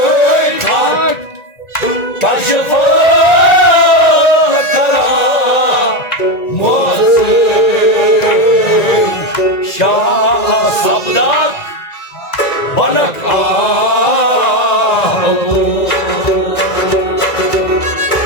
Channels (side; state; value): right; late; 1.9 ms